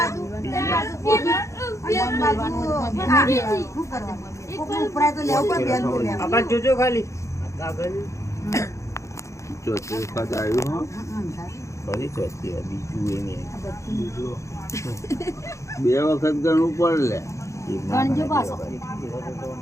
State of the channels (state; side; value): late; right; 0.15 ms